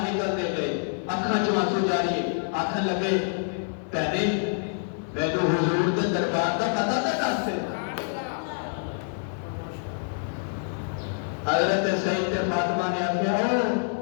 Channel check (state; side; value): silent; right; digital silence